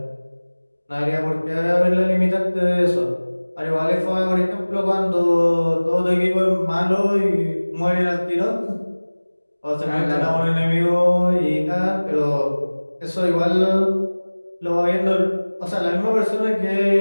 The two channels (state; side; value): inverted; both; correlation -1.00